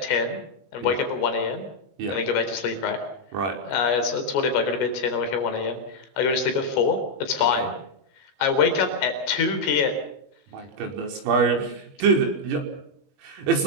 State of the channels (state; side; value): late; left; 21 ms